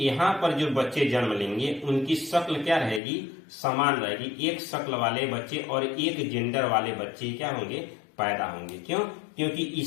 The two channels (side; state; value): right; drops out; at 3.0 s